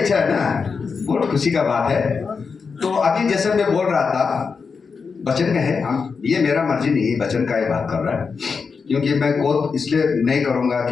है ना, बहुत खुशी का बात है। तो अभी जैसे मैं बोल रहा था वचन का है, हम ये मेरा मर्जी नहीं है, वचन का ही बात कर रहा है, क्योंकि मैं कोट इसलिए नहीं करूँगा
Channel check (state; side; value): quieter; right; 5.3 dB